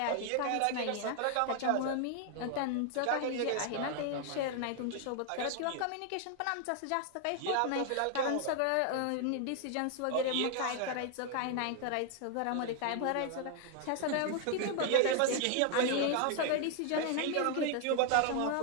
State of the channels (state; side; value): different; both; correlation 0.00